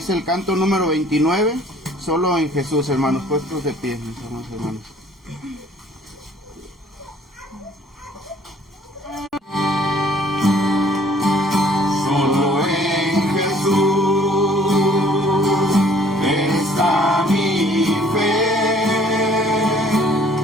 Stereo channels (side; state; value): both; normal; correlation 0.57